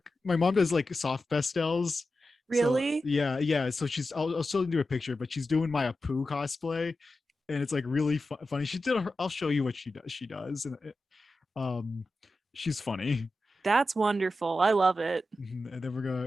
my mom does like soft pastels. So Really? yeah. So I'll still do a picture, but she's doing my Apu cosplay, and it's like really funny. She did. I'll show you what she does. She does, and um, she's funny. That's wonderful. I love it. And then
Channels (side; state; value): both; normal; correlation 0.92